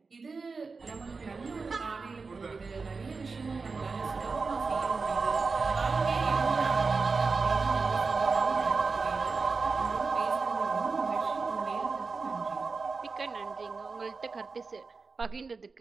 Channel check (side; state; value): left; quieter; 4.4 dB